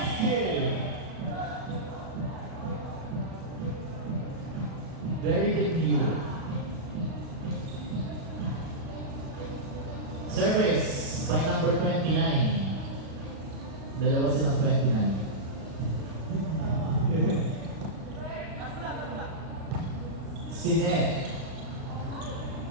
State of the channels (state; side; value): late; left; 36 ms